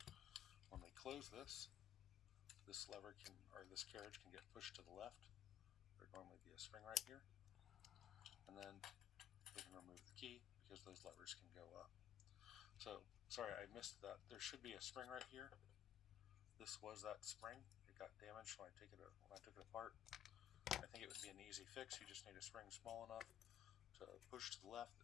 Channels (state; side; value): quieter; right; 10.3 dB